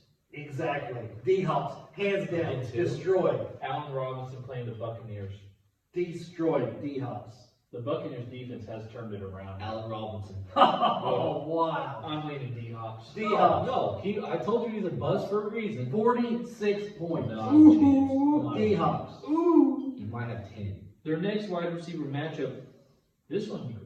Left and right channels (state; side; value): identical; both; correlation 1.00